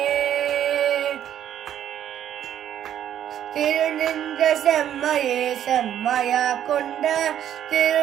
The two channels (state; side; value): quieter; left; 10.5 dB